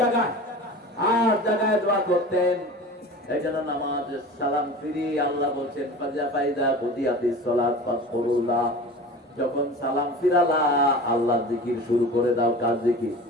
জায়গায় 8 জায়গায় দোয়া করতেন। এইজন্য নামাজে সালাম ফিরি আল্লাহ বলেন ফাজা ফাইদা বুদিয়াতিস সালাত ফাসকুরুল্লাহ, যখন সালাম ফিরালা আল্লাহর জিকির শুরু করে দাও। কার জিকির?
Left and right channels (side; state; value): both; normal; correlation 0.36